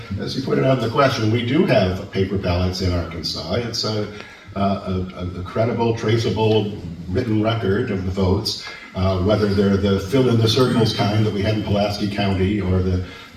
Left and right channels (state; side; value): identical; both; correlation 1.00